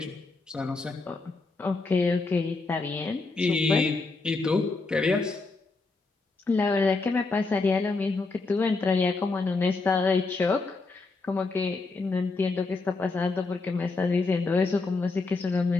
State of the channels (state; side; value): quieter; right; 3.8 dB